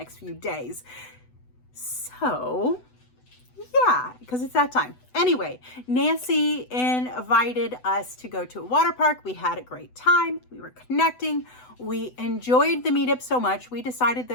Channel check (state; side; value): late; right; 8.0 ms